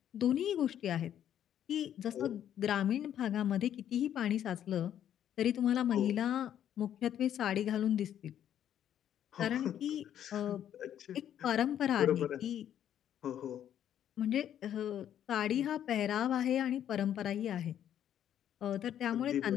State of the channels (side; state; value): right; quieter; 10.3 dB